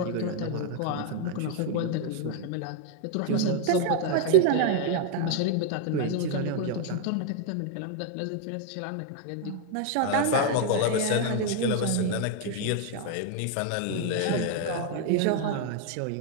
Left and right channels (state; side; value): different; both; correlation 0.00